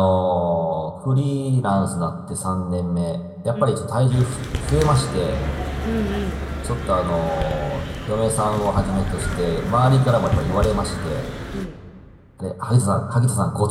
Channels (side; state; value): both; identical; correlation 1.00